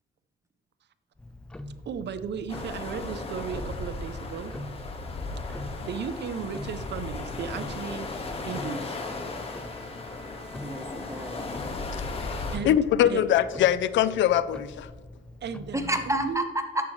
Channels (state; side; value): quieter; right; 4.7 dB